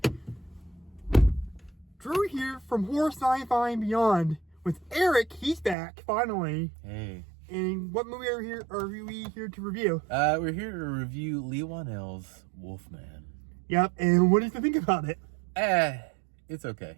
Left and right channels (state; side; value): drops out; left; at 5.8 s